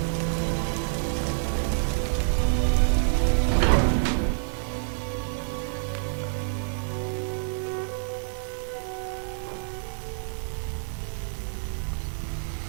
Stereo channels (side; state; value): left; silent; digital silence